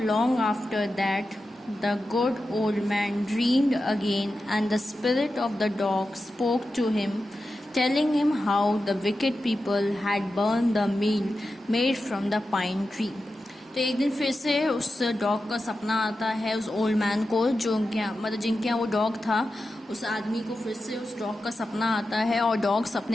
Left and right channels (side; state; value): both; normal; correlation 0.91